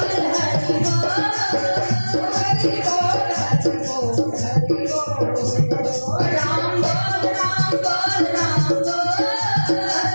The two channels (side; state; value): both; inverted; correlation -1.00